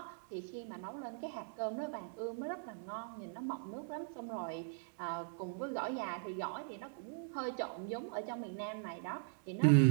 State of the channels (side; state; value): left; silent; 51 dB below the other